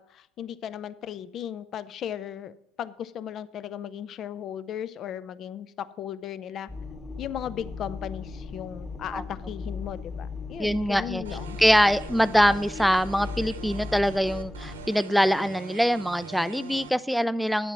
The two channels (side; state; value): both; normal; correlation 0.93